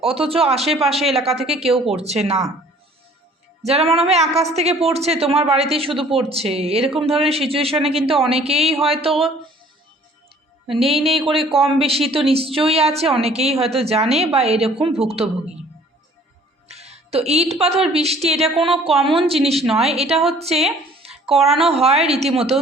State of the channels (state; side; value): normal; both; correlation 0.55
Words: অথচ আশেপাশে এলাকা থেকে কেউ করছে না। যারা মনে হয় আকাশ থেকে পড়ছে, তোমার বাড়িতেই শুধু পড়ছে, এরকম ধরনের সিচুয়েশনে কিন্তু অনেকেই হয়তো নেই নেই করে কম বেশি তো নিশ্চয়ই আছে, অনেকেই হয়তো জানে বা এরকম ভুক্তভোগী। তো ইট পাথর বৃষ্টি এটা কোনো কমন জিনিস নয়, এটা হচ্ছে করানো হয় রীতিমতন